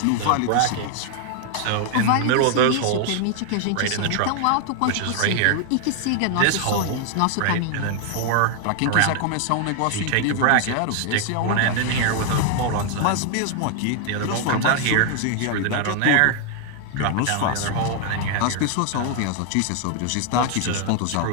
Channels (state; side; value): different; both; correlation 0.00